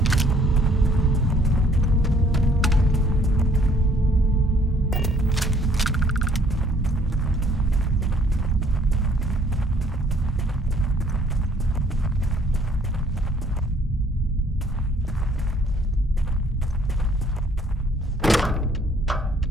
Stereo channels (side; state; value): both; normal; correlation 0.61